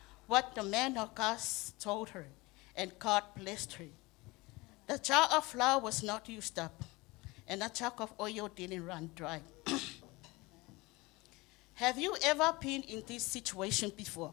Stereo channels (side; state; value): right; quieter; 22.9 dB